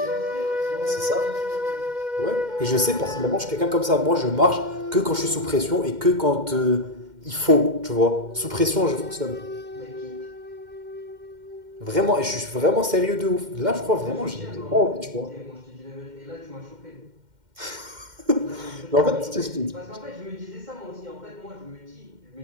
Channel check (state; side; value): late; left; 2.1 ms